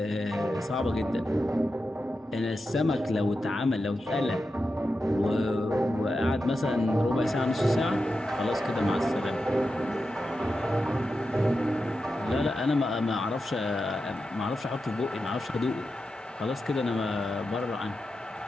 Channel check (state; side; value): normal; both; correlation 0.90